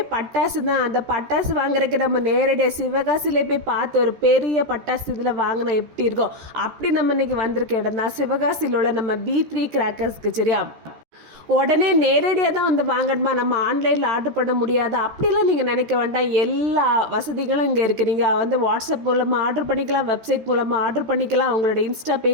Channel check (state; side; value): late; left; 13 ms